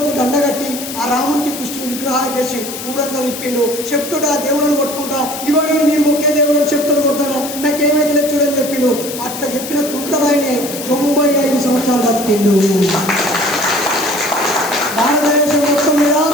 దండగట్టి ఆ రాముడికి, కృష్ణుని విగ్రహాలు చేసి ఊరంతా తిప్పిండు. చెప్తుడు ఆ దేవుళ్ళను కొట్టుకుంటా, ఇవాళ మీరు ఒకే దేవుళ్ళని చెప్తులు కొడతానా, నాకేమైతే లేదు చూడని చెప్పిండు. అట్లా చెప్పిన తుంటరాయనే 95 సంవత్సరాలు బతికిండు. భారతదేశం మొత్తం మీద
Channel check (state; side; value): noise; left; hiss, 9 dB below the sound